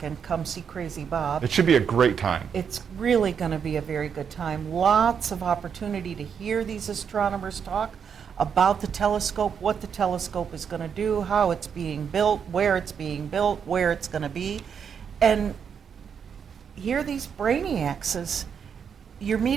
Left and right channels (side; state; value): left; quieter; 7.2 dB